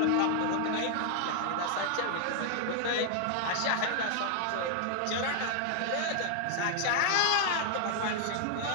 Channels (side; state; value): both; different; correlation 0.00